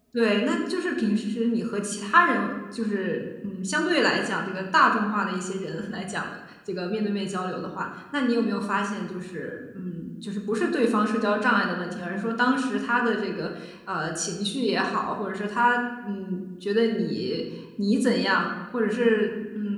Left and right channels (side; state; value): both; identical; correlation 1.00